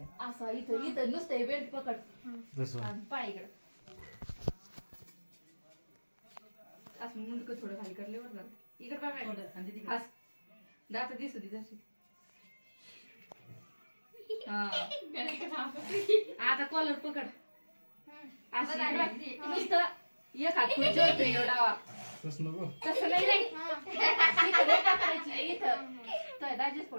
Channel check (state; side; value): inverted; both; correlation -1.00